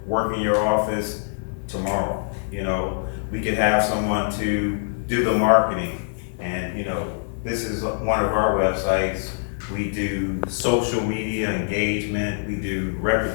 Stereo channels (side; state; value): right; silent; 60 dB below the other